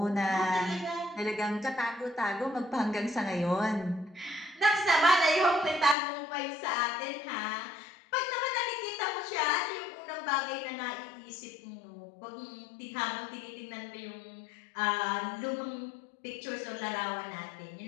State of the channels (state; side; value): drops out; right; at 6.0 s